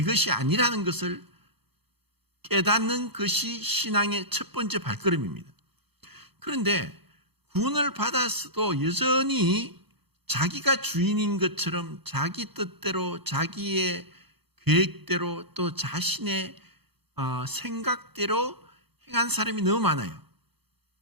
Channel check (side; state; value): left; late; 0.98 ms